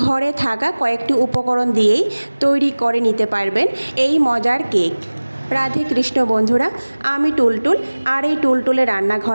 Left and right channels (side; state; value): both; inverted; correlation -1.00